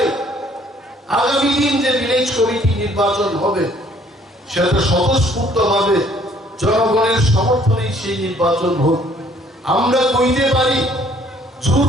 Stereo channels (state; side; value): normal; both; correlation 0.60